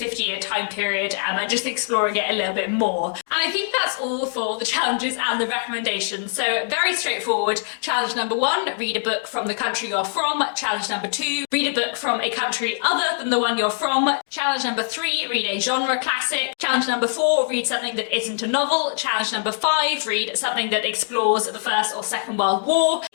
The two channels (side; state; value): right; silent; 64 dB below the other